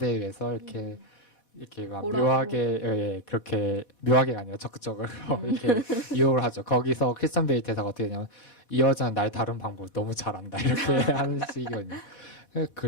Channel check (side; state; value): right; late; 4.1 ms